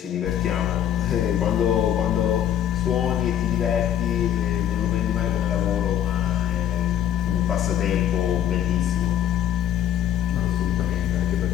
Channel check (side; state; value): right; quieter; 10.5 dB